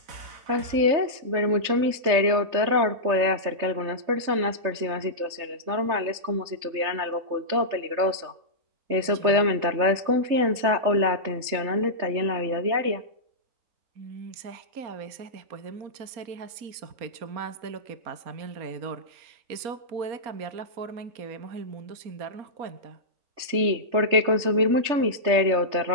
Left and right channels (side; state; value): left; late; 3.3 ms